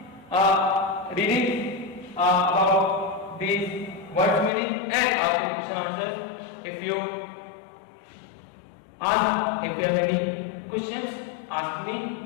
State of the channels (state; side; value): drops out; right; at 4.5 s